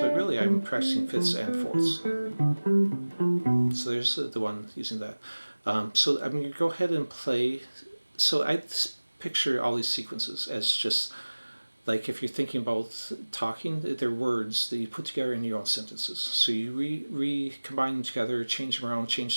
really I'm practicing fifths and fourths. So there's the one using that. So I'm going to go ahead and play. So I picture all these sequences as just like if you're thinking about talking, they're words that you put together in your own sentences. So you recombine them together, change them around,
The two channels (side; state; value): both; inverted; correlation -1.00